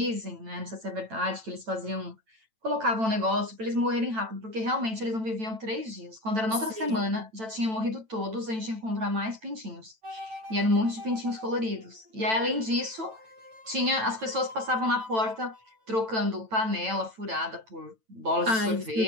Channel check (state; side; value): late; left; 9.0 ms